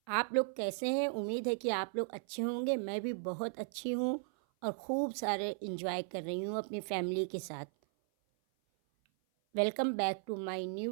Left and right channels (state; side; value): silent; left; 54 dB below the other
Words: आप लोग कैसे हैं? उम्मीद है कि आप लोग अच्छे होंगे। मैं भी बहुत अच्छी हूँ और खूब सारे इंजॉय कर रही हूँ अपनी फैमिली के साथ। Welcome back to my